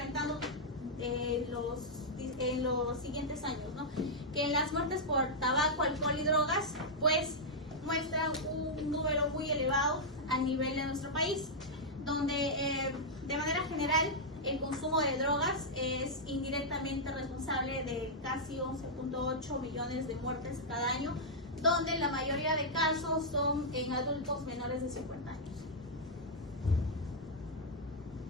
en los siguientes años, ¿no? Que en las muertes por tabaco, alcohol y drogas, pues muestran un número muy elevado a nivel de nuestro país, donde de manera general el consumo de drogas es indirectamente responsable de casi 11.8 millones de muertes cada año, donde la mayoría de casos son en adultos menores de 50 años.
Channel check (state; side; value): normal; both; correlation -0.06